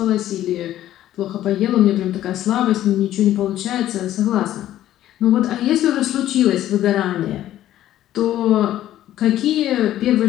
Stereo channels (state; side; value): quieter; right; 12.9 dB